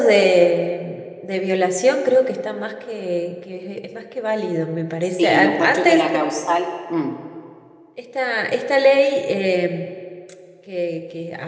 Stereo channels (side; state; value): both; identical; correlation 1.00